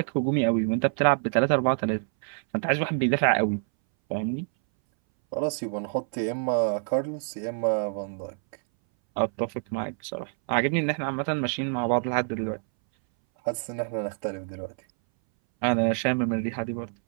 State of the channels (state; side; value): silent; left; 60 dB below the other